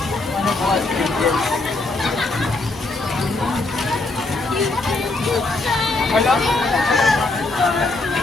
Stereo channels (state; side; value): quieter; right; 3.2 dB